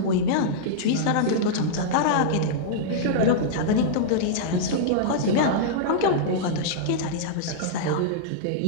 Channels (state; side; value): different; both; correlation -0.02